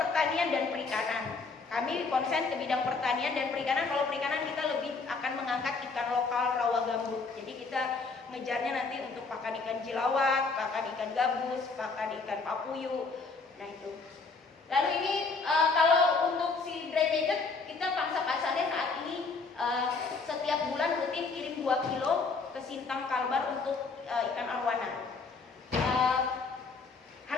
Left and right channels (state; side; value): quieter; right; 4.3 dB